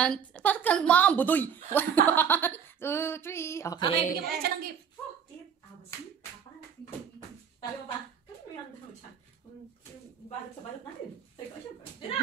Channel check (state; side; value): quieter; left; 7.6 dB